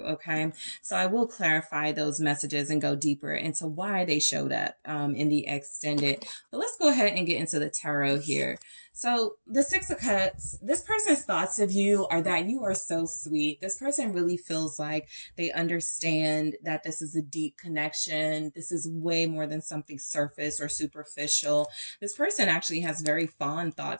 Okay. So I will clarify those messages and go deeper into why they showed up in the extended. But let's go ahead and get into the tarot here. So the Six of Cups, this person's thoughts of you are that you are so sweet. This person really feels like they understand that this is a deep connection. This is way more than something surface or superficial. This person actually has very fond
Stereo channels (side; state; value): both; inverted; correlation -1.00